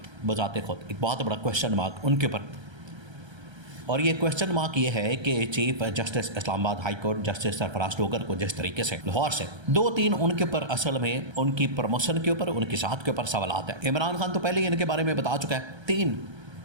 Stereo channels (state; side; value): late; left; 1.3 ms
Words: बजाते खुद एक बहुत बड़ा क्वेश्चन मार्क उनके ऊपर। और ये क्वेश्चन मार्क ये है कि chief justice Islamabad high court justice Sarfaraz Dogar को जिस तरीके से लाहौर से दो तीन उनके ऊपर असल में उनकी प्रमोशन के ऊपर, उनकी साथ के ऊपर सवालात हैं। इमरान खान तो पहले ही इनके बारे में बता चुका है, 3